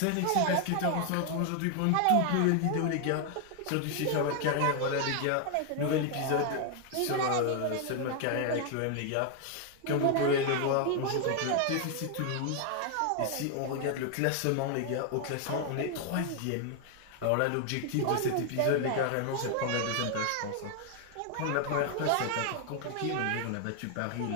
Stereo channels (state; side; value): different; both; correlation 0.00